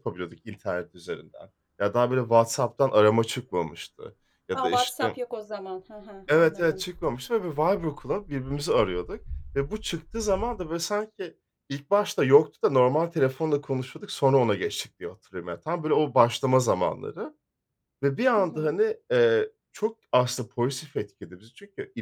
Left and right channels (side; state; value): both; identical; correlation 1.00